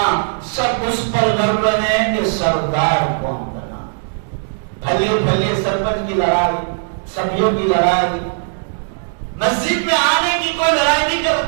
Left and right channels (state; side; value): silent; left; digital silence